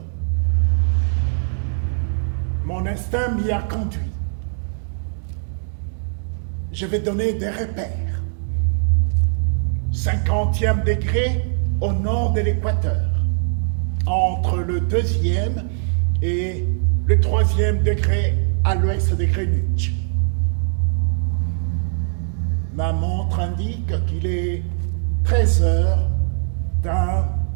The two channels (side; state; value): left; silent; digital silence